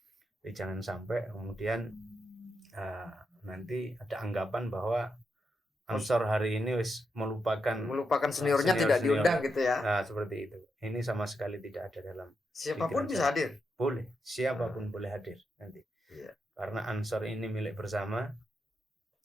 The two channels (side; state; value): both; normal; correlation 0.84